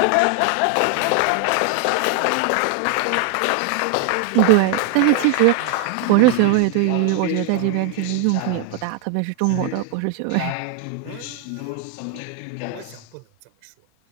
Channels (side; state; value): both; different; correlation 0.01